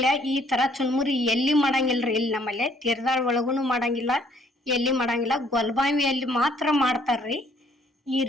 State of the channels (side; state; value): both; normal; correlation 0.63